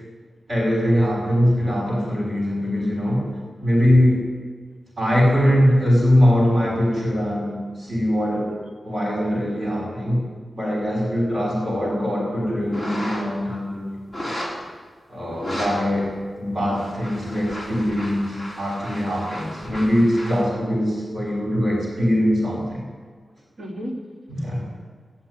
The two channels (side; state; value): both; normal; correlation 0.95